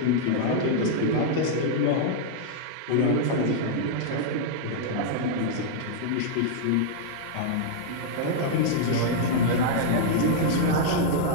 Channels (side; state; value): both; different; correlation -0.01